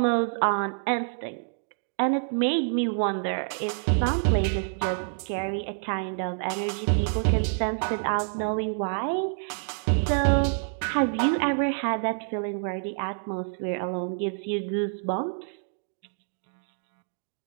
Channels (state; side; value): silent; left; digital silence